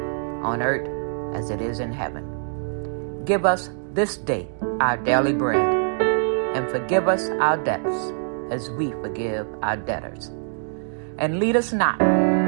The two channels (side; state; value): left; silent; digital silence